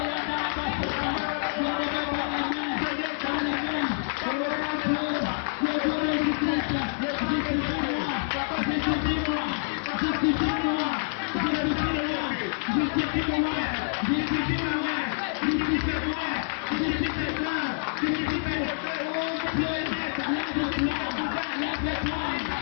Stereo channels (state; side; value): silent; right; digital silence